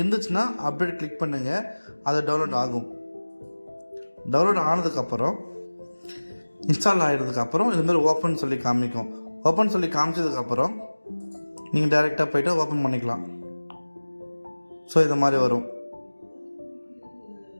அப்டேட் கிளிக் பண்ணுங்கள், அது டவுன்லோட் ஆகும். டவுன்லோட் ஆனதுக்கப்புறம் இன்ஸ்டால் ஆகிடுறதுக்கப்புறம் இதுமாதிரி ஓப்பன் சொல்லி காமிக்கும். ஓப்பன் சொல்லி காமிச்சதுக்கப்புறம் நீங்கள் டைரெக்டாக போய்ட்டு ஓப்பன் பண்ணிக்கலாம். ஸோ இது மாதிரி வரும்.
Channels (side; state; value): both; inverted; correlation -1.00